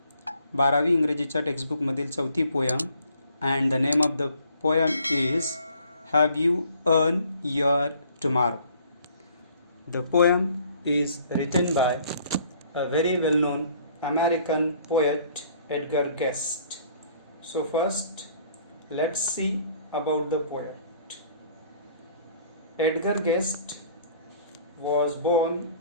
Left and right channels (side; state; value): both; inverted; correlation -0.58